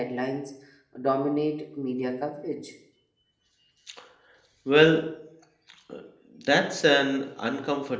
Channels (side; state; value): both; identical; correlation 1.00